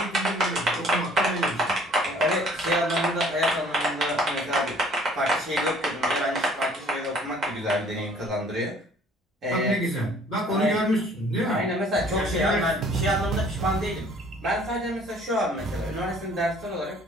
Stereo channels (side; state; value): both; normal; correlation 0.55